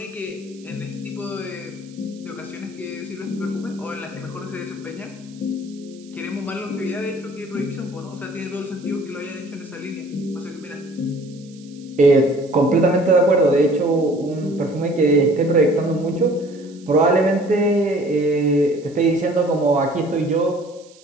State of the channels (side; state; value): right; noise; hiss, 26 dB below the sound